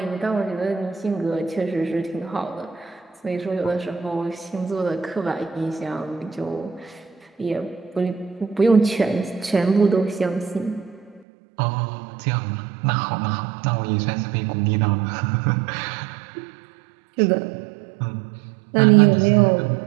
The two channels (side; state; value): left; drops out; at 11.2 s